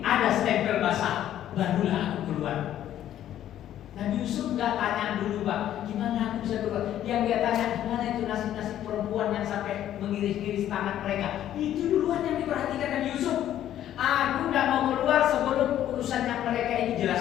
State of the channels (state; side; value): quieter; right; 11.7 dB